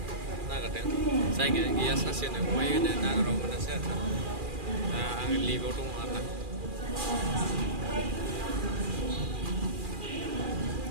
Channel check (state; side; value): late; left; 2.4 ms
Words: नागिरदों जायगायानो गैया सासेनो बहाय होनो नागिराव मोनासै आरोना दा आङो लिभआव दङ आरोना